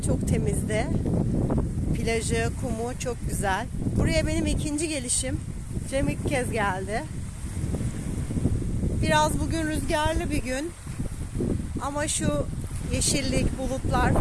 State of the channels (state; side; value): identical; both; correlation 1.00